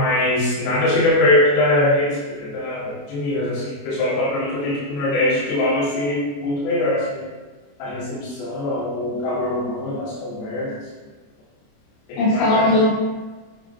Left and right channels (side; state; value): right; late; 28 ms